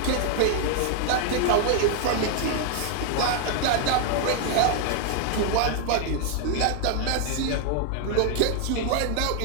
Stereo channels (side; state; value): both; different; correlation 0.00